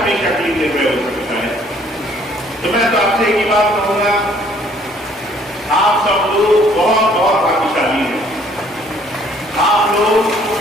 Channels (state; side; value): normal; both; correlation 0.61